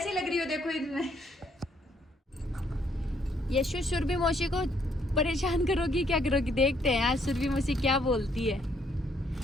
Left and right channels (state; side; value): normal; both; correlation 0.69